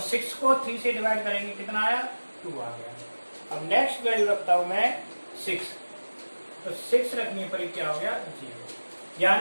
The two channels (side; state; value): both; inverted; correlation -1.00